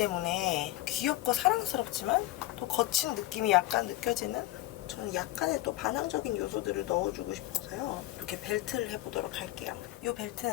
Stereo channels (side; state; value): right; quieter; 16.8 dB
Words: 귀엽고 사랑스럽지만 또 거친 느낌이 약간 느껴지는, 저는 약간의 또 반항적인 요소들을 넣어주고 싶어서요. 이렇게 벨트를 해보도록 할게요. 이